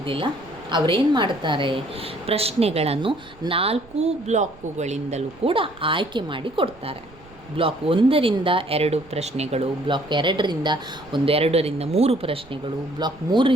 ಅವರೇನು ಮಾಡ್ತಾರೆ, ಪ್ರಶ್ನೆಗಳನ್ನು 4 ಬ್ಲಾಕುಗಳಿಂದಲೂ ಕೂಡ ಆಯ್ಕೆ ಮಾಡಿ ಕೊಡ್ತಾರೆ. ಬ್ಲಾಕ್ 1ರಿಂದ 2 ಪ್ರಶ್ನೆಗಳು, ಬ್ಲಾಕ್ 2ರಿಂದ 2ರಿಂದ 3 ಪ್ರಶ್ನೆಗಳು, ಬ್ಲಾಕ್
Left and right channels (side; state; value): right; noise; rumble, 24 dB below the sound